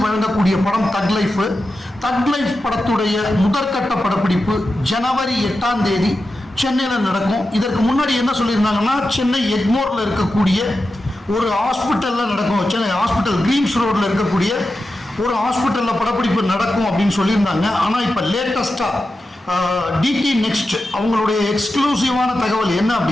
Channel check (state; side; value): normal; both; correlation 0.91